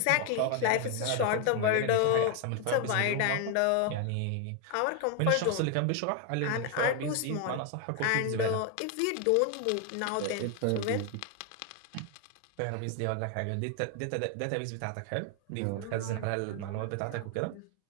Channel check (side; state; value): both; different; correlation 0.01